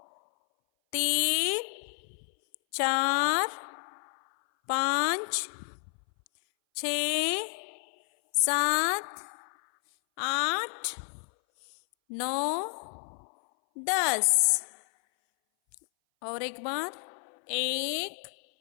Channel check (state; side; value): silent; right; 58 dB below the other